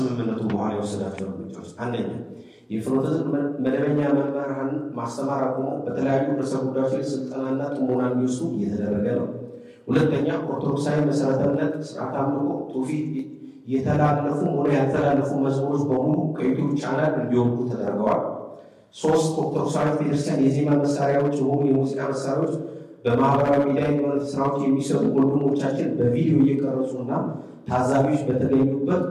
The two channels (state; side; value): identical; both; correlation 1.00